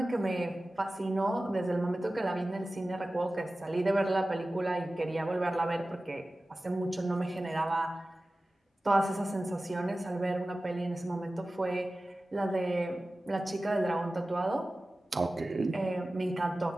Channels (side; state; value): both; normal; correlation 0.96